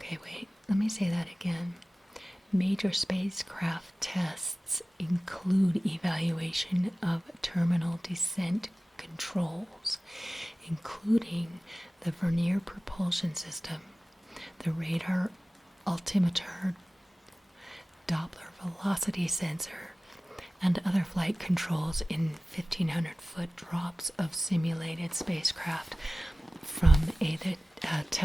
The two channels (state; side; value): normal; both; correlation 0.97